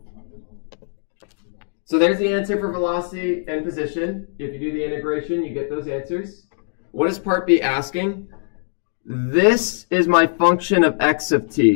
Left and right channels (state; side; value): silent; right; digital silence